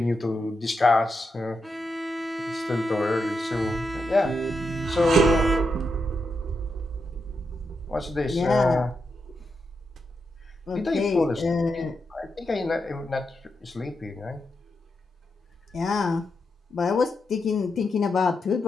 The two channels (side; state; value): both; normal; correlation 0.85